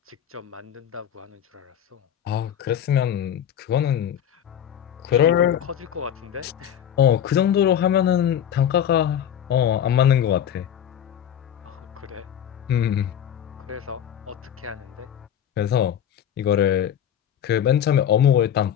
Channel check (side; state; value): right; quieter; 9.6 dB